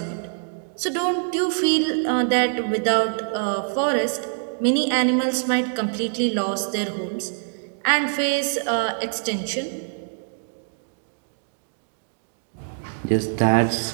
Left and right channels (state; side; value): silent; left; digital silence